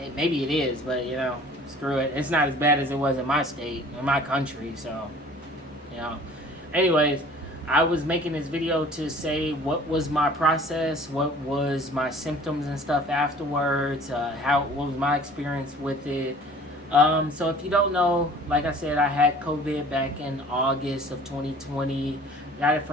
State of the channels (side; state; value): both; normal; correlation 0.49